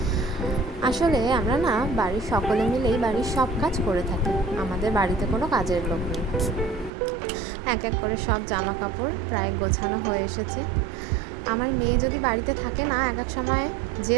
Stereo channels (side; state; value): left; drops out; at 6.9 s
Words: আসলে আমরা না বাড়ির সকলে মিলেই বাড়ির সব কাজ করে থাকি, আমাদের বাড়িতে কোনো কাজের লোক নেই। এক এক করে সব জামা কাপড় প্রায় গোছানো হয়ে এসেছে। আমার মেয়ে যদি বাড়িতে থাকে না, এক এক সময়